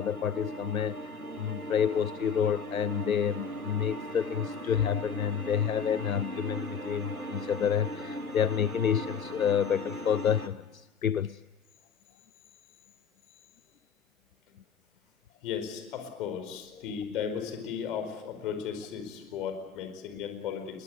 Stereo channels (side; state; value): right; quieter; 7.0 dB